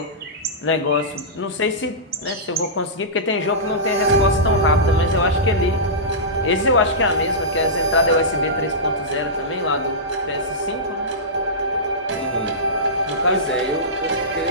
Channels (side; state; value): both; normal; correlation -0.16